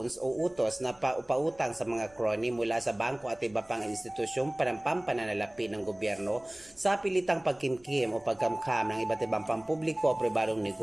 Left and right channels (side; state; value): right; noise; rumble, 29 dB below the sound